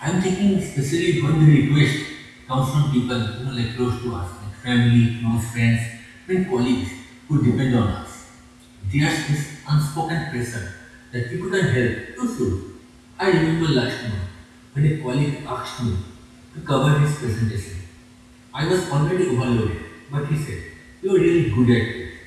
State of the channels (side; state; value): both; identical; correlation 1.00